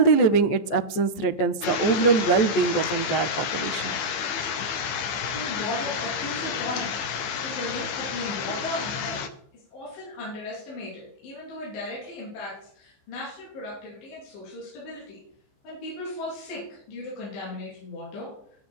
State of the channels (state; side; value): late; right; 15 ms